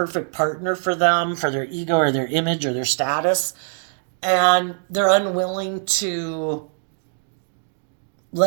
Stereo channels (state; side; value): silent; left; digital silence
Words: partner for them, for their ego or their image or their status. And they're unwilling to